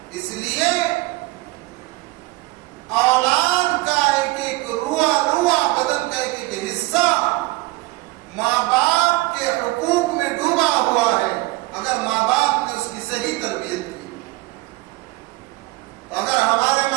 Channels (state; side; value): quieter; left; 20.8 dB